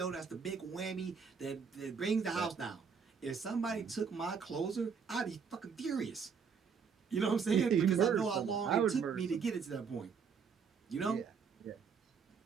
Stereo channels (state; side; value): quieter; left; 6.1 dB